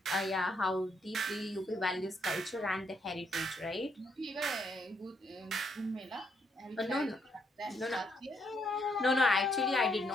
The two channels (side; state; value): both; normal; correlation 0.74